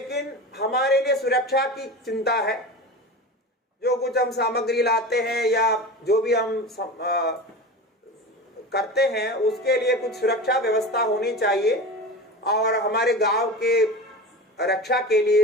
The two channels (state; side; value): normal; both; correlation 0.30